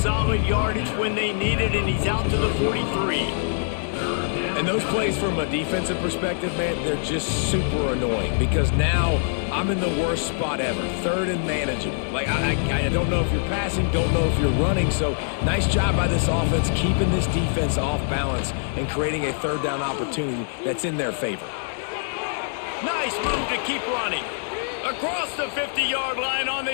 yardage when they need it, and he's out to the 43. And those plays from a defensive perspective, man, they're just super annoying because now I'm in the worst spot ever, 3rd and manageable. Like, I don't know if you're passing, don't know if you're running, so nice job by this offense keeping this defense off balance and creating a 3rd down opportunity that's in their favor. Nice move to keep running. Across the 50-yard line on the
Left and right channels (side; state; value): right; silent; digital silence